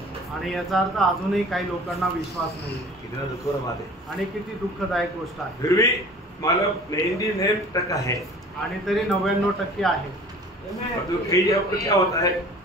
आणि याचा अर्थ अजूनही काही लोकांना विश्वास नाही। कितना दुखद बात है आणि किती दुःखदायक गोष्ट आहे। फिर भी मतलब 99% है आणि तरी 99% आहे। तो कई जगह पर क्या होता है,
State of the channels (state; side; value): normal; both; correlation 0.45